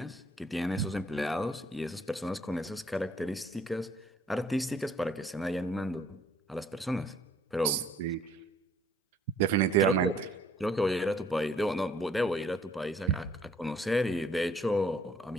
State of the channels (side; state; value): both; normal; correlation 0.61